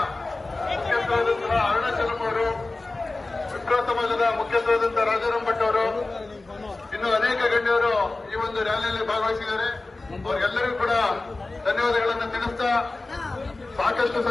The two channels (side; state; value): right; quieter; 3.2 dB